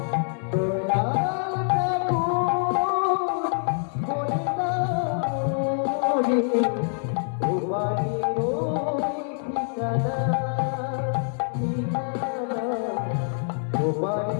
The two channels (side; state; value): right; silent; digital silence